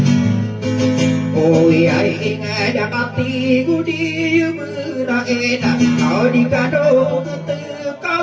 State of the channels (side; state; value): both; identical; correlation 1.00